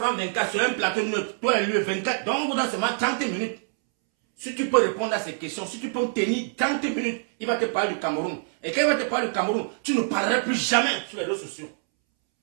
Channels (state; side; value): silent; left; 61 dB below the other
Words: 24, sur un plateau de toi et lui 24, donc on vous donne seulement 30 minutes. Si tu peux répondre à ces questions, si tu peux tenir 30 minutes, il va te parler du Cameroun. Et quand il va te parler du Cameroun, tu ne parleras plus jamais sur les réseaux sociaux.